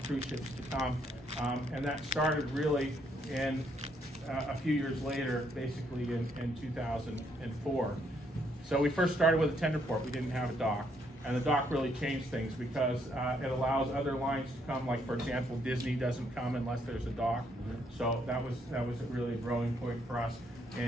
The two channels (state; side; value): normal; both; correlation 0.72